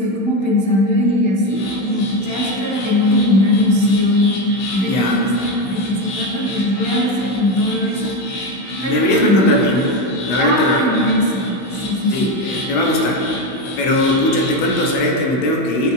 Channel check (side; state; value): right; late; 16 ms